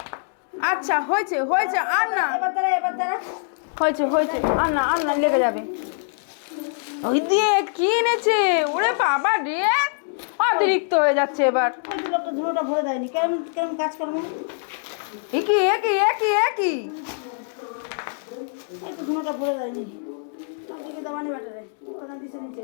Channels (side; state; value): right; silent; digital silence